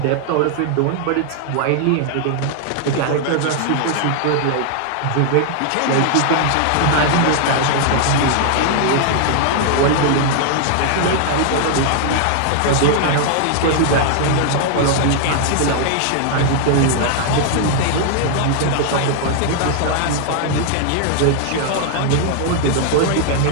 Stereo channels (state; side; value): different; both; correlation 0.00